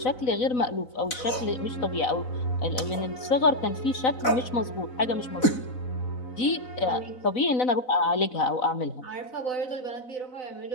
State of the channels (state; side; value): late; right; 4.0 ms